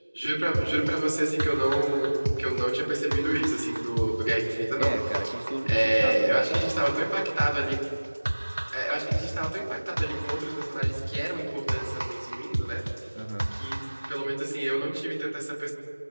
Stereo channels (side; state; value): both; inverted; correlation -1.00